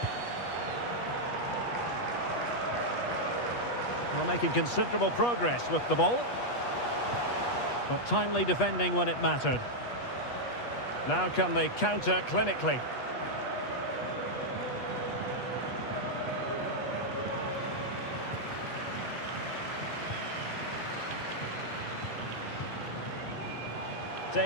Well, making considerable progress with the ball. But timely defending when it mattered. Now can they counter clinically?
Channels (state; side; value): late; right; 8.3 ms